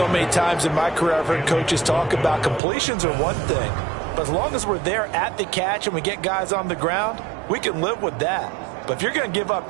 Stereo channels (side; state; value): left; drops out; at 2.6 s